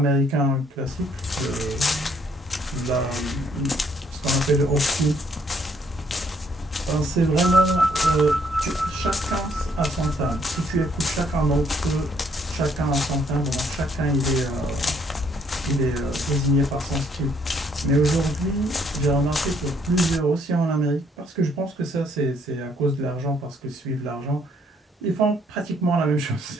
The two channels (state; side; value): normal; both; correlation 0.67